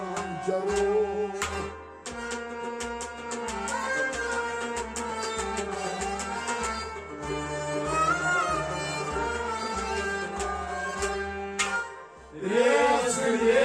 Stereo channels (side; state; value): both; identical; correlation 1.00